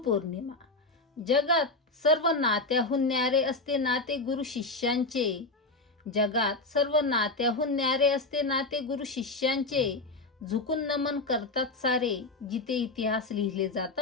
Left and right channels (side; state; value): right; quieter; 3.2 dB